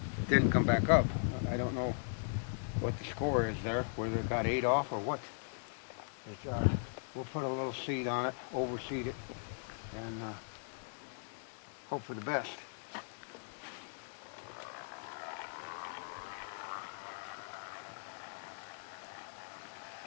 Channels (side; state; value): right; silent; digital silence